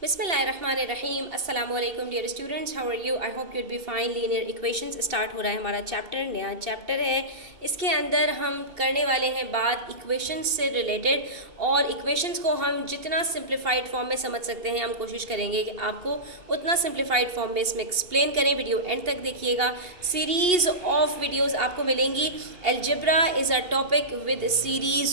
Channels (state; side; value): late; left; 2.8 ms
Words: बिस्मिल्लाहिर्रहमानिर्रहीम अस्सलामुअलैकुम dear students, how are you? I hope you'd be fine. Linear equations start हो रहा है हमारा चैप्टर, नया चैप्टर है। इसके अंदर हम करने वाले हैं बात इक्वेशंस से रिलेटेड, और इक्वेशंस को हम जितना सिंप्लीफाइड फॉर्म में समझ सकते हैं हम कोशिश करेंगे कि आपको उतना सिंप्लीफाइड फॉर्म में इसमें एक्सप्लेन करें। वीडियो एंड तक देखिएगा, सीरीज़ ऑफ वीडियोज़ आपको मिलेंगी। Algebra is a topic with